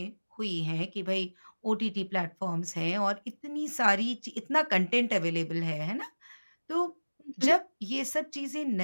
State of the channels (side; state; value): both; inverted; correlation -1.00